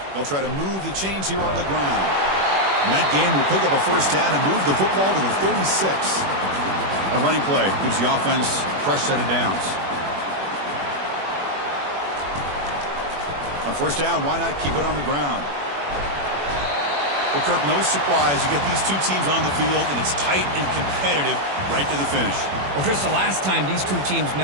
They'll try to move the chains here on the ground. And that game will pick up a first down and move the football to the 36. A running play gives the offense a fresh set of downs. On first down, why not keep it on the ground? Well, Kirk, no surprise. You get these two teams on the field, and it's tight and competitive right to the finish. Well, Chris, the last time these two teams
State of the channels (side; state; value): left; late; 21 ms